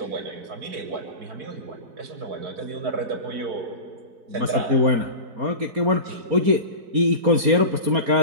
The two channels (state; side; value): late; left; 4.3 ms